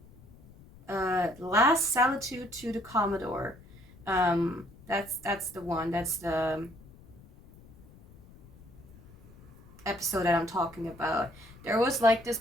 Last Salitude to the Commodore. That's the one. That's the episode that I'm talking about. There was like this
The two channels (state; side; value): noise; left; rumble, 22 dB below the sound